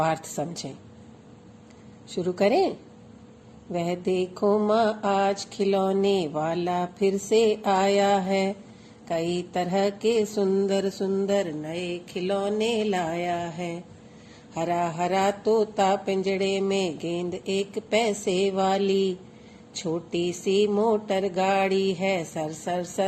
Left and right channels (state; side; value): identical; both; correlation 1.00